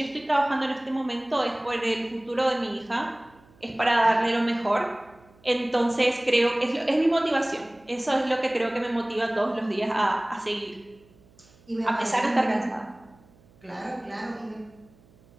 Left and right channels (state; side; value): noise; right; hum, 29 dB below the sound